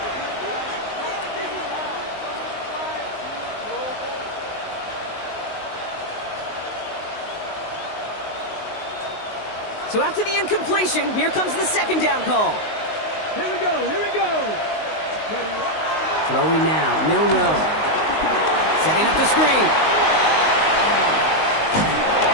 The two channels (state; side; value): late; right; 19 ms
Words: So after the incompletion, here comes the 2nd down call. Here we go, here we go. Throwing now, Milroe. Setting up the screen.